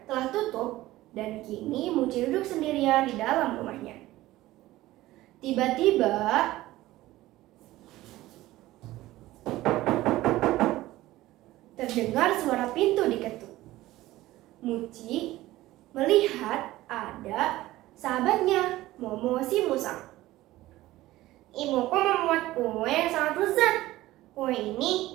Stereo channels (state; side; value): quieter; left; 16.7 dB